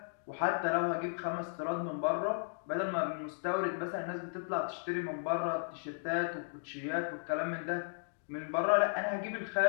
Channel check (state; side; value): silent; right; digital silence